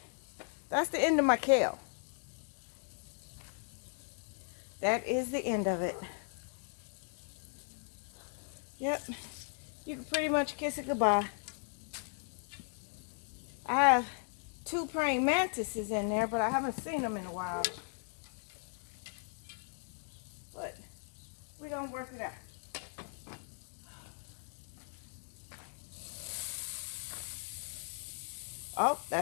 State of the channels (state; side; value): silent; right; 53 dB below the other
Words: that's the end of my kale. That is the end of it. Yep, you can pretty much kiss it goodbye. I have 2 praying mantises in there, but I haven't seen them in a while. But we're gonna work it out. Oh,